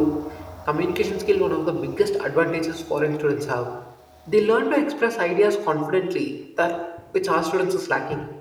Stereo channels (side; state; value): both; identical; correlation 1.00